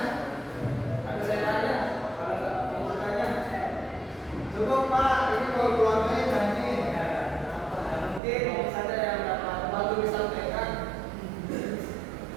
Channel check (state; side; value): drops out; left; at 8.2 s